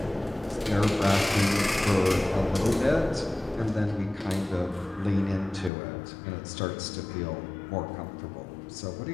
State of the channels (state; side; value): drops out; right; at 5.7 s